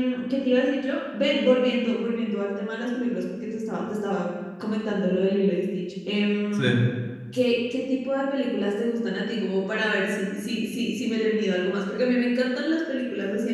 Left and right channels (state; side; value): identical; both; correlation 1.00